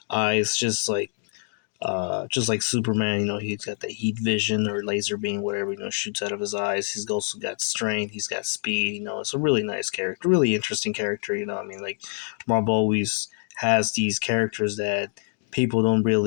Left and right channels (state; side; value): silent; right; 57 dB below the other